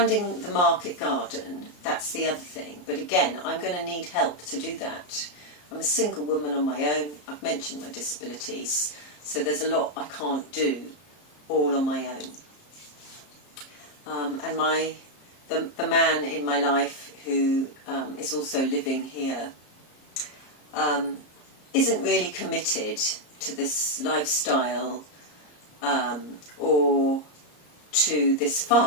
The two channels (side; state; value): right; late; 34 ms